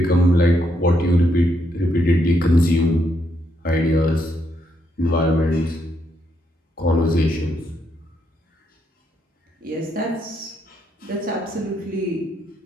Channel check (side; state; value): both; normal; correlation 0.77